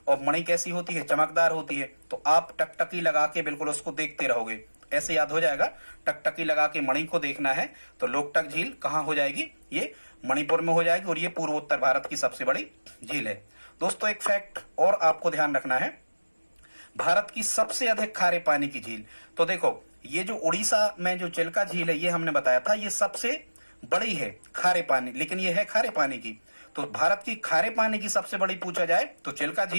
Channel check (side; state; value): both; inverted; correlation -1.00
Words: और मणि कैसी होती है? चमकदार होती है, तो आप टकटकी लगा के बिल्कुल उसको देखते रहोगे, ऐसे याद हो जाएगा। टकटकी लगा के मणि को देखना है तो लोकटक झील कहाँ हो जाएगी? ये मणिपुर में हो जाएगी, और ये पूर्वोत्तर भारत की सबसे बड़ी झील है। दोस्तों एक फैक्ट और आपको ध्यान रखना है, भारत की सबसे अधिक खारे पानी की झील, तो देखो ये जो उड़ीसा में जो चिल्का झील है ये हमने बताया था, ये सबसे बड़ी है खारे पानी, लेकिन ये है खारे पानी की। तो भारत की खारे पानी की सबसे बड़ी पूछा जाए तो चिल्का